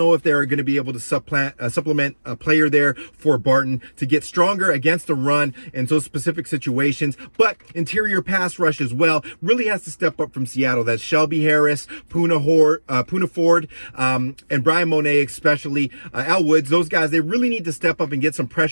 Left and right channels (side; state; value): both; inverted; correlation -1.00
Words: if they're going to be able to supplement a player there for Barton to get stronger against the run in those specific situations. But interior pass rush as well really has to step up from Seattle. That's Shelby Harris, Poona Ford, and Brian Monet, especially Al Woods. Those guys, they really need to step up and get some